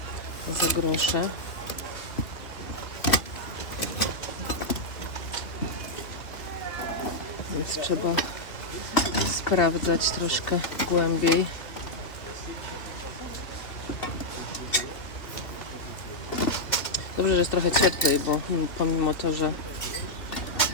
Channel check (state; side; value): late; right; 2.8 ms